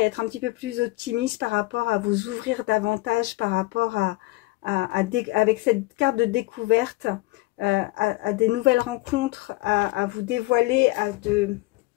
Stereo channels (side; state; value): right; quieter; 21.2 dB